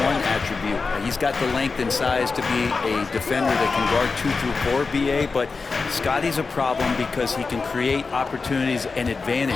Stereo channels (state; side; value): quieter; right; 4.4 dB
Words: attribute. He's got the length and size to be a defender that can guard 2 through 4, BA, but Scotty's a problem because he can create opportunities and